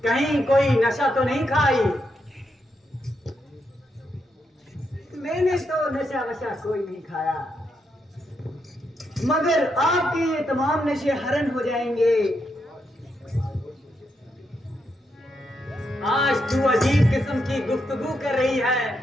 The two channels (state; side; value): normal; both; correlation 0.81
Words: कहीं कोई नशा तो नहीं खाई? मैंने तो नशा वशा कोई नहीं खाया, मगर आपके ये तमाम नशे हरण हो जाएंगे। आज तू अजीब किस्म की गुफ्तगू कर रही